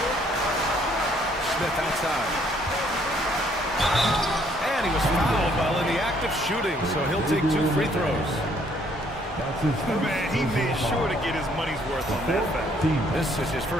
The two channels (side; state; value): both; normal; correlation 0.65